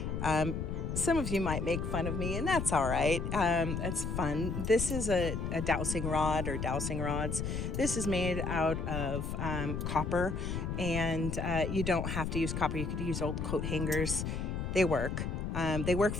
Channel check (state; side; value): noise; left; rumble, 2 dB below the sound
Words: Some of you might make fun of me, and that's all right. It's fun. This is a dowsing rod or dowsing rods. This is made out of copper, and you don't have to use copper. You could use old coat hangers. They work. They work